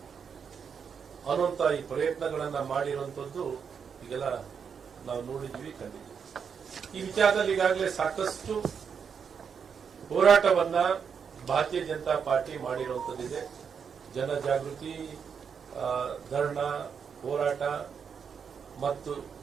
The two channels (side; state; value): left; quieter; 6.7 dB